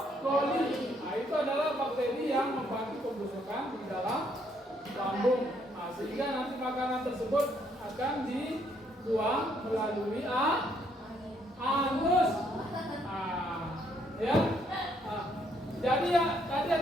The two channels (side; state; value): both; normal; correlation 0.70